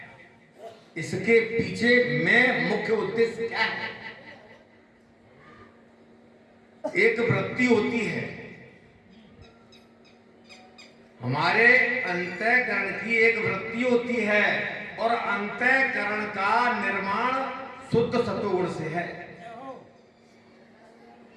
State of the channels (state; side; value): identical; both; correlation 1.00